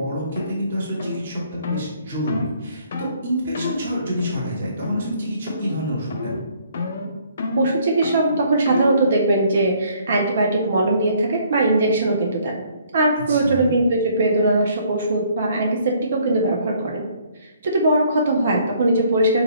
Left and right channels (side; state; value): both; inverted; correlation -0.63